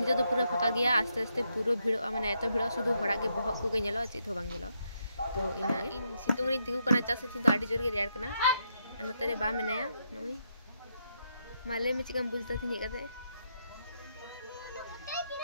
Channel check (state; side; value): inverted; both; correlation -0.79